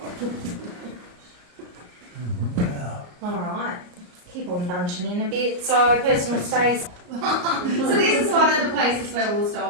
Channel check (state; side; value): late; left; 34 ms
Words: Alright, keep on bunching in a bit. So personal space. So this is one of the places where we'll